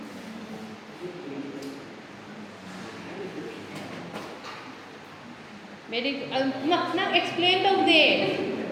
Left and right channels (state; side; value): identical; both; correlation 1.00